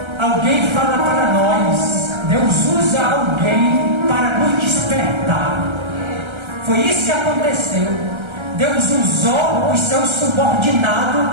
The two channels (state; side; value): late; left; 1.3 ms